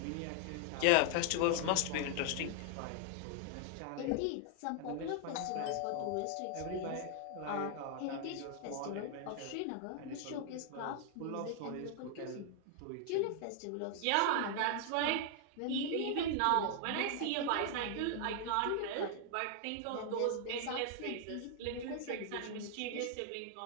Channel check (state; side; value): different; both; correlation 0.00